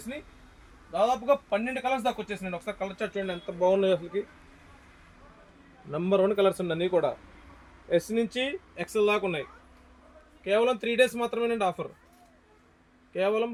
దాదాపుగా 12 కలర్స్ దాకా వచ్చేసినాయి. ఒకసారి కలర్ చార్ట్ చూడండి ఎంత బాగున్నాయి. అసలుకి నెంబర్ 1 కలర్స్ అండి అన్నీ కూడా. ఎస్ నుంచి ఎక్స్ఎల్ దాకా ఉన్నాయి. కేవలం 3 డేస్ మాత్రమేనండి ఆఫర్. కేవలం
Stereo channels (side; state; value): both; identical; correlation 1.00